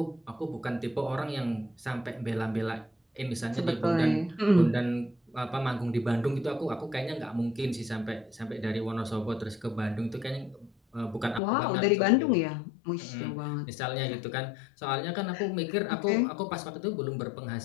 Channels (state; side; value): drops out; right; at 11.4 s